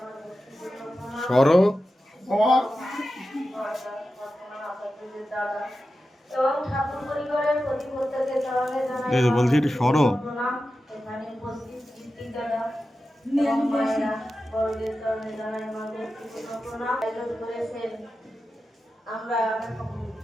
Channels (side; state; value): both; normal; correlation 0.92